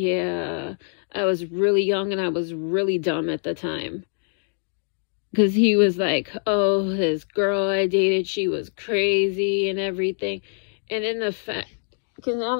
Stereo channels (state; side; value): silent; right; digital silence